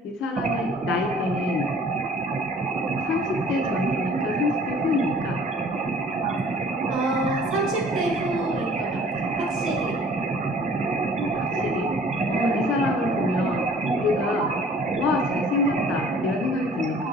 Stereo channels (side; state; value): both; normal; correlation 0.52